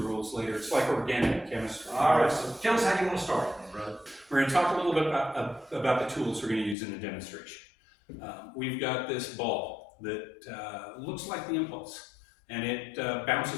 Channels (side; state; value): right; drops out; at 6.8 s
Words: later. It's like organic chemistry. All right, so tell us how you want to start, brother. We're going to talk a little bit about the tools we're going to use in the demonstration. We've got this ball that looks like the impulse, and it